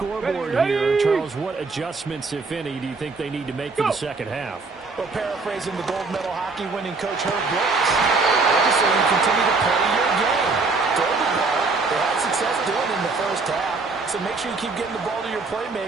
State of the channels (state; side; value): quieter; left; 4.0 dB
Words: here. Charles, what adjustments, if any, do you think they need to make for the second half? Well, paraphrasing the gold medal hockey winning coach Herb Brooks, I just say you continue to play your game. Throw the ball. They had success doing it in the first half. So make sure you keep getting the ball to your